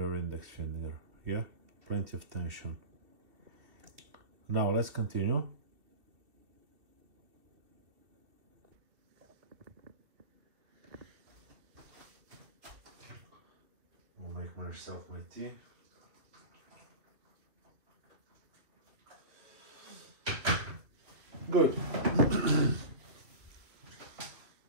index finger, yeah? Plenty of tension. Now let's continue. I'll make myself my tea. Good.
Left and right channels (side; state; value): left; late; 2.7 ms